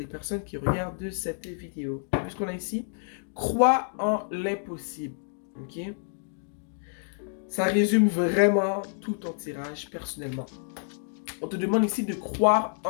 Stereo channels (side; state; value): right; silent; digital silence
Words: personnes qui regardent cette vidéo. Vu ce qu'on a ici, crois en l'impossible. Ok? Ça résume vraiment tout ton tirage personnellement. On te demande ici de croire